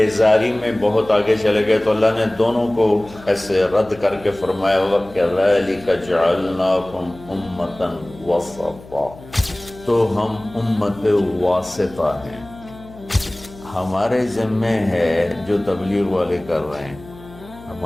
میں بہت آگے چلے گئے، تو اللہ نے دونوں کو ایسے رد کر کے فرمایا وَكَذَلِكَ جَعَلْنَاكُمْ أُمَّةً وَسَطًا، تو ہم امت واسطہ ہیں۔ ہمارے ذمے ہے جو تبلیغ والے کر رہے ہیں،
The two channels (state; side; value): noise; left; hum, 20 dB below the sound